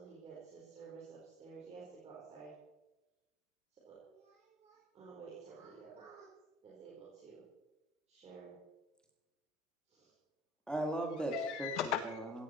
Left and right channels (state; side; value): normal; both; correlation 0.49